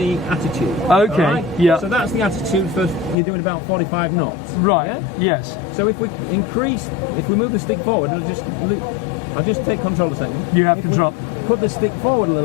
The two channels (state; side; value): drops out; right; at 3.2 s